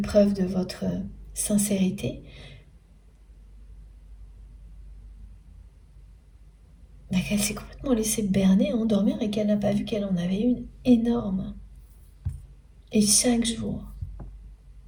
de votre sincérité, qu'elle s'est complètement laissée berner, endormir et qu'elle n'a pas vu qu'elle en avait une énorme. Et chaque jour.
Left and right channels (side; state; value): both; identical; correlation 1.00